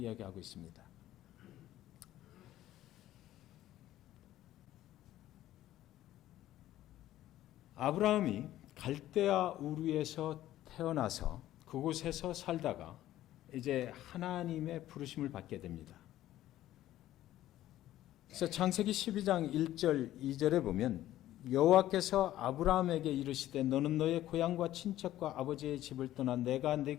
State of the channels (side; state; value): right; quieter; 13.9 dB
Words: 있습니다. 아브라함이 갈대아 우르에서 태어나서 그곳에서 살다가 이제 하나님의 부르심을 받게 됩니다. 그래서 창세기 12장 1절 2절에 보면, 여호와께서 아브라함에게 이르시되 너는 너의 고향과 친척과 아버지의 집을 떠나 내가